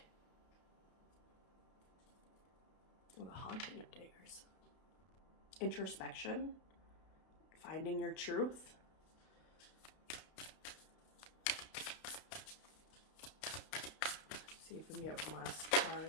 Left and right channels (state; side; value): late; right; 32 ms